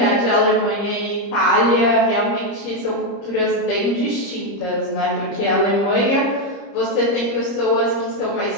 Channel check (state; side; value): late; right; 30 ms